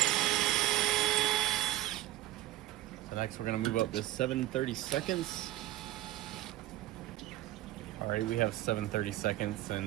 So next we're gonna move up to 7/32. All right, we have 7/32,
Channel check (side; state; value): left; quieter; 15.7 dB